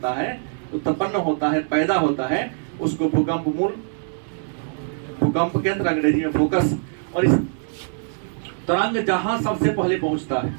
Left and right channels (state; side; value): silent; left; digital silence